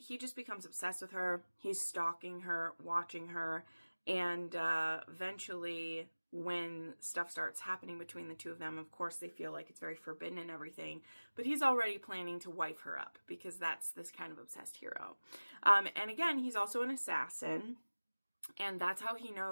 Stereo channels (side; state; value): both; inverted; correlation -1.00